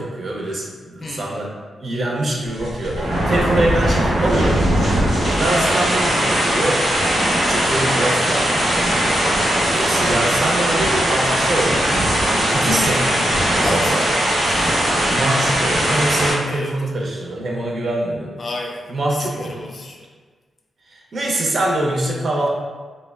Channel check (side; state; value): both; normal; correlation 0.85